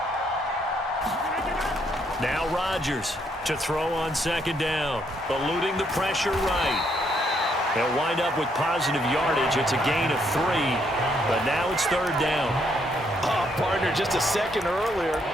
Now Rodgers to throw on second down, eluding the pressure right. They'll wind up with positive yardage. It's a gain of 3, but now it's third down. Oh, partner, just a second earlier,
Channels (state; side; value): normal; both; correlation 0.73